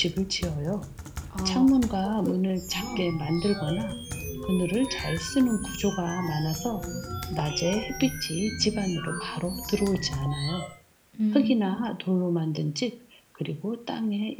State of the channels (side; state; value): both; identical; correlation 1.00